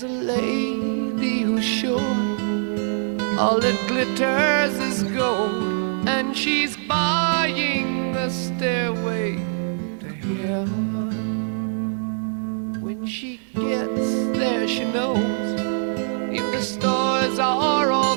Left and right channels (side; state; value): left; silent; 62 dB below the other